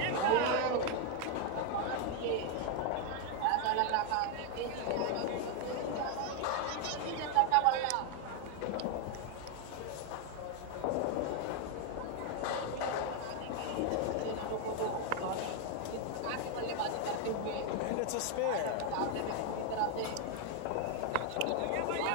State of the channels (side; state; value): both; different; correlation 0.01